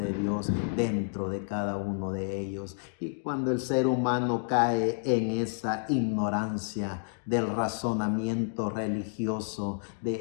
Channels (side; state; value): right; silent; digital silence